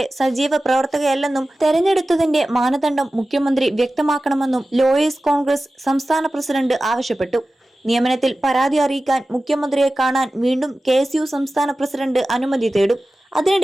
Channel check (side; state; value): both; normal; correlation 0.95